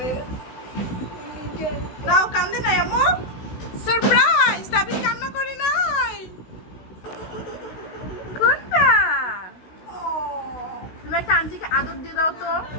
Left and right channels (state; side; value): late; right; 16 ms